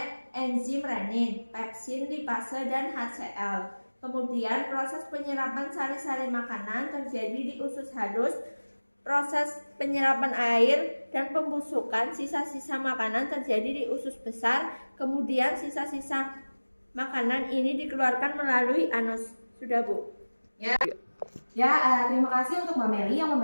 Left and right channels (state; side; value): inverted; both; correlation -1.00